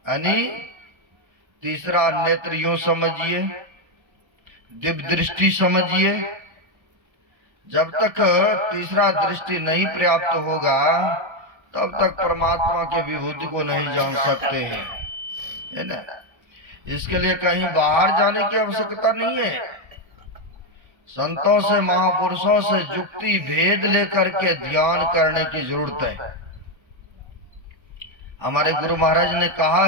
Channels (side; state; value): left; late; 1.3 ms